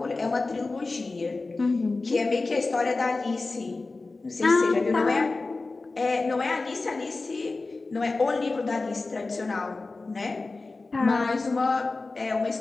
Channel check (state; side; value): quieter; right; 3.6 dB